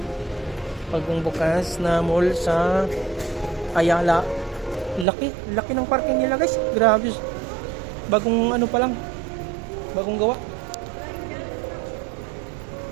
Bagong bukas na mall sa Ayala. Laki ng parking nila guys. Grabe. Bagong pa lang. Bagong gawa.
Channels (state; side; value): drops out; left; at 5.1 s